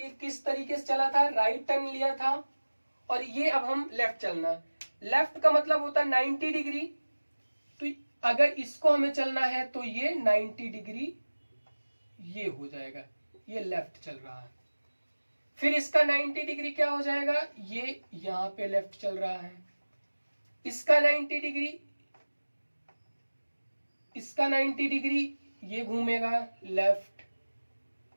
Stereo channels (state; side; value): inverted; both; correlation -1.00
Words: किस तरीके से चला था, राइट टर्न लिया था, और ये अब हम लेफ्ट चलना। लेफ्ट का मतलब होता है 90 डिग्री, तो अगर इसको हमें चलना है तो ये 90 डिग्री ये हो जाएगा, ये लेफ्ट चल रहा है। फिर इसका 90 डिग्री क्या हो जाएगा, ये यहां पे लेफ्ट चल रहा है। इसका 90 डिग्री, इसका 90 डिग्री ये घूमेगा लेफ्ट,